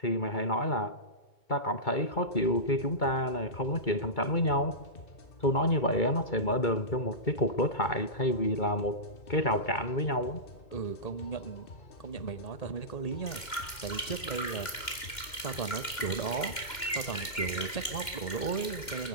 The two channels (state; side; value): late; right; 2.1 ms